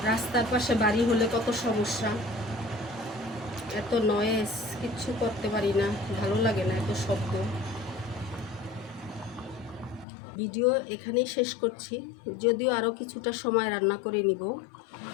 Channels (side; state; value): right; drops out; at 10.1 s